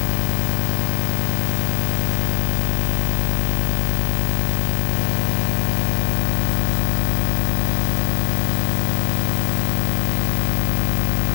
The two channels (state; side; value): silent; right; digital silence